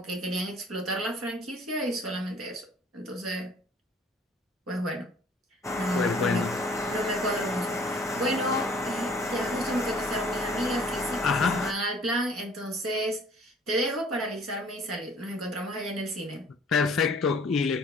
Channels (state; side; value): normal; both; correlation 0.54